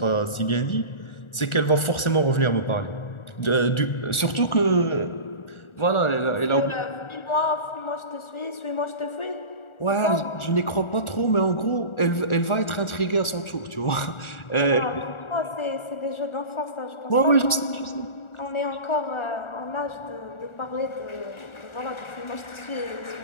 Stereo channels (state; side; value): late; right; 1.4 ms